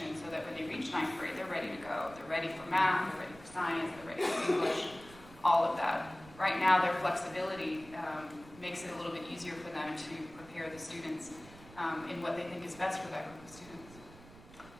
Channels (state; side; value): noise; right; rumble, 20 dB below the sound